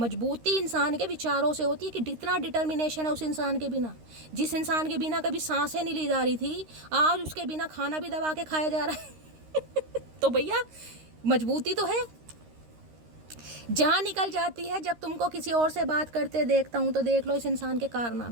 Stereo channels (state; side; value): late; left; 13 ms